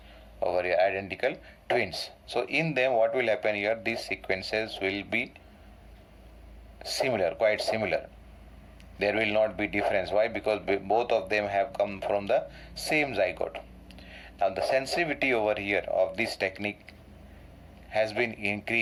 over here, identical twins. So in them what will happen here? These sequences will be similar, quite similar. There will not be difference. Why? Because both of them have come from the same zygote. Now the sensitivity over here of this technique has been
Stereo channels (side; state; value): both; identical; correlation 1.00